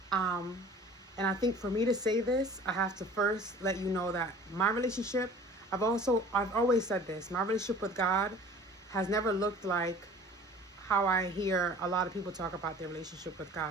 Um and I think for me to say this, I have to first let you know that my relationship, I've always said this, my relationship with God has never looked like how I hear a lot of people talk about their relationship with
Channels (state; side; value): normal; both; correlation 0.46